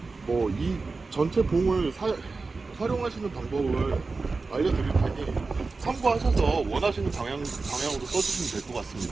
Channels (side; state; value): left; quieter; 4.0 dB